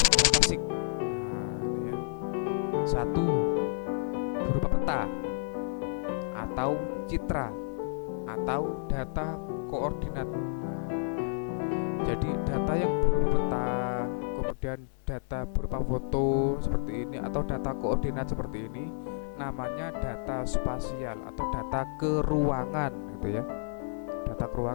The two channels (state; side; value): silent; right; digital silence